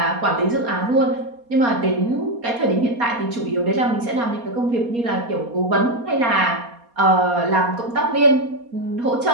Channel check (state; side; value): late; left; 4.2 ms